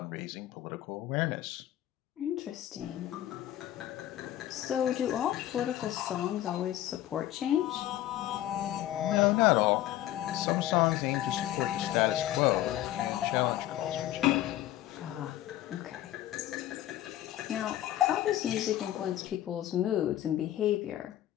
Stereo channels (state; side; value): quieter; right; 13.5 dB